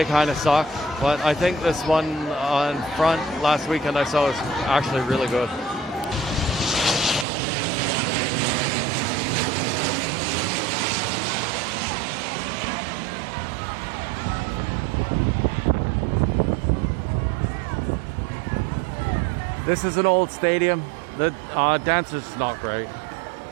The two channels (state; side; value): drops out; left; at 7.2 s